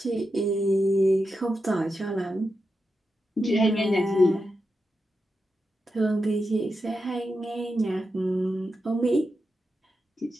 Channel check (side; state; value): both; normal; correlation 0.88